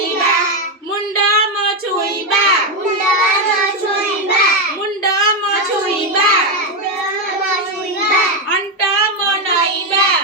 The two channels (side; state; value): both; normal; correlation 0.07